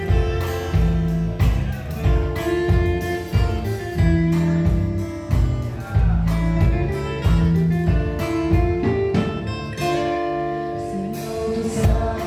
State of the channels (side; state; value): both; identical; correlation 1.00